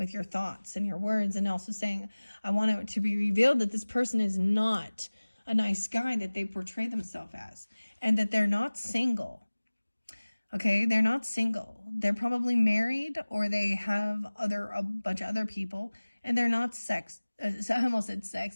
your thoughts and your words, and also saying, I want it to be revealed that this person is not a nice guy that they portray themselves as, and that they're not single. Okay, they're not single. They're probably married, or they have a bunch of other people, and they're not I almost said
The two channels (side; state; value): both; inverted; correlation -1.00